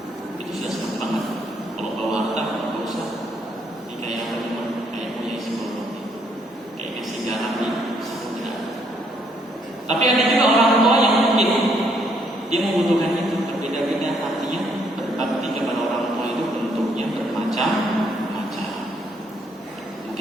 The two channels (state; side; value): normal; both; correlation 0.70